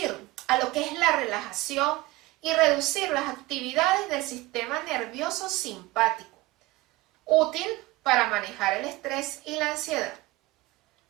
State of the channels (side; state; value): left; quieter; 20.2 dB